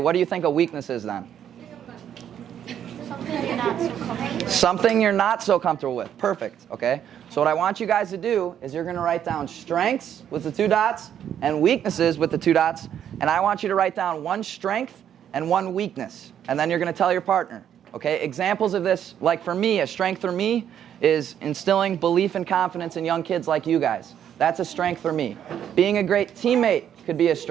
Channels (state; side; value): quieter; left; 9.6 dB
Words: do you think a weakness is then? Something you're not so comfortable with. Something you're not so comfortable with. Perfect, okay? So what I want you guys to do is you're going to write down strengths with the 2 dots and weaknesses with the 2 dots, and I want you to write down 1 strength and 1 weakness, and then you're going to tell your partner. Okay, examples of this, like for me, a strength for me is instilling belief and confidence in young kids like you guys. That's a strength for me. Being a great teammate could be a